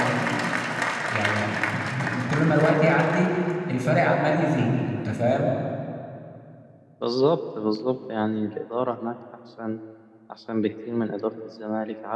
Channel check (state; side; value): identical; both; correlation 1.00